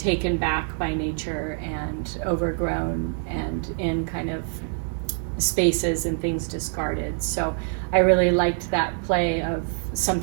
back by nature and overgrown and in kind of spaces and things discarded. So I really liked that play of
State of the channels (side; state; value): left; silent; 57 dB below the other